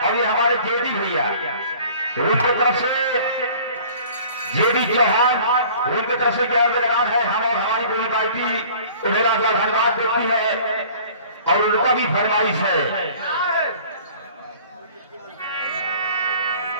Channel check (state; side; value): inverted; both; correlation -0.49